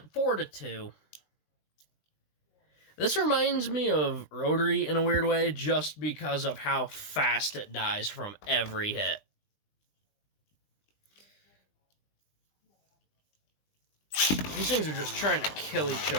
4-2. This reminds me of Rotary in a weird way, just because of how fast it dies from every hit. These things are just trying to kill each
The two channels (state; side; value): late; right; 20 ms